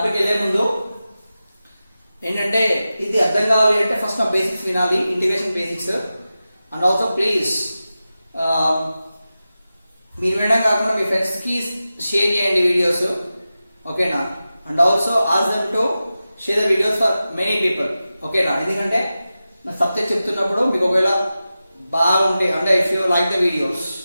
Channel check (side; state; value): both; inverted; correlation -0.93